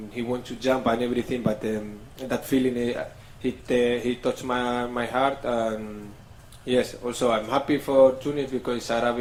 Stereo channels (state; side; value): identical; both; correlation 1.00